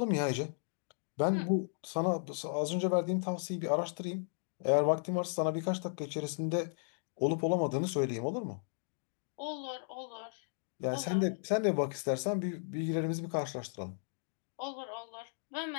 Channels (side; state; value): right; silent; digital silence